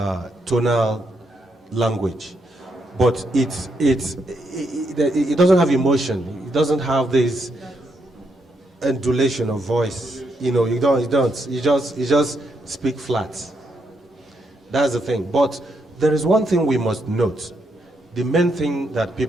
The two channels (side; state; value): both; normal; correlation 0.78